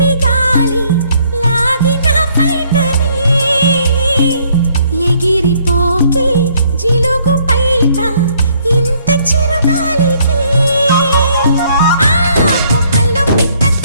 గాలి లాగిన పైటని ఎగిరిపోకే జిలుగు పైట ఇంత చిరుగాలికి కొమ్మల్లో పిట్ట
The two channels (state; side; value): inverted; both; correlation -0.65